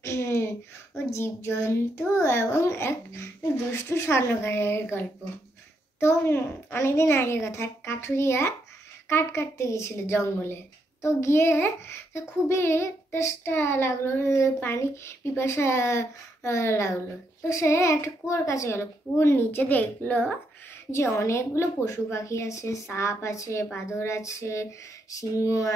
জীবজন্তু এবং এক দুষ্টু স্বর্ণকারের গল্প। তো অনেকদিন আগের কথা, কাঠুরিয়া কাঠ কাটতে গেছিল জঙ্গলে। তো গিয়ে খুবই তেষ্টা লাগলো, পানি পিপাসা লাগলো। তো সে একটা কুয়োর কাছে গেল। কুয়োর নিচে দেখলো যে অনেকগুলো পশু পাখি আছে, সাপ আছে, বাঁদর আছে, সিংহ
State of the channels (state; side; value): normal; both; correlation 0.78